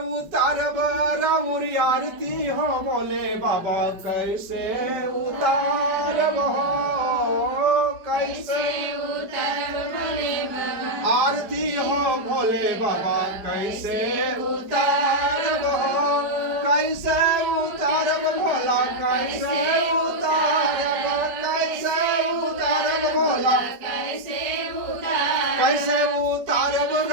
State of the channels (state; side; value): late; left; 5.0 ms